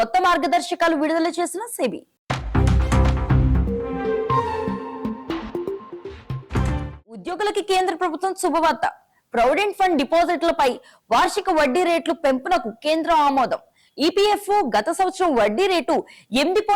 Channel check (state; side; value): identical; both; correlation 1.00